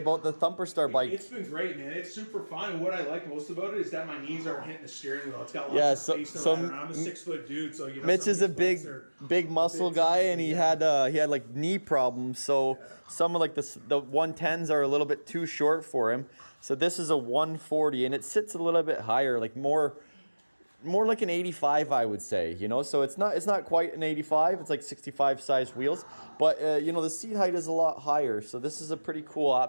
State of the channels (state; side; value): inverted; both; correlation -1.00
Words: the Thumper Star bike? It's been great, man. It's super fun. And what I like most about it is that my knees aren't hitting the steering wheel. It's got lots of space to ride around. I'm a 6-foot dude, so you know. Mitch is a big muscle guy, and he had like knee problems. So some of like the 110s are a little bit too short for him. So this is a 140, and it sits a little bit higher, like more like an 85, I would say, you know. So it's not quite an 85. It's like 65 size wheels, but you know, the seat height is a lot higher. So this is a pretty cool